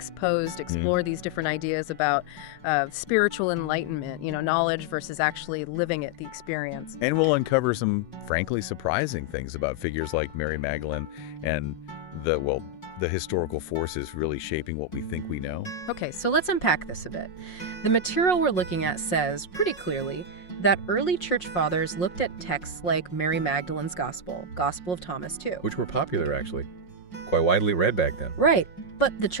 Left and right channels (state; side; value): late; right; 5.6 ms